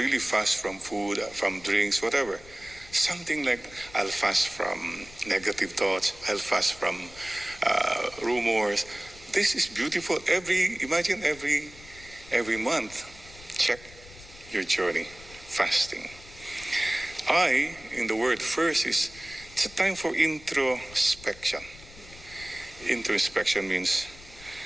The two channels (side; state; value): left; noise; rumble, 20 dB below the sound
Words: fast from food, from drinks, whatever. Something like, I'll fast from negative thoughts. I'll fast from rumors. This is beautiful. Imagine every month, check your journey, fasting. In the word first is, it's a time for introspection. Introspection means